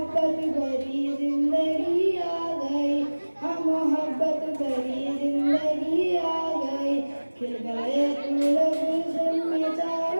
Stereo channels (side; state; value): both; inverted; correlation -1.00